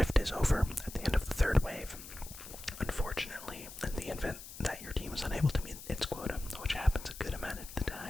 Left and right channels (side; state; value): left; noise; hiss, 14 dB below the sound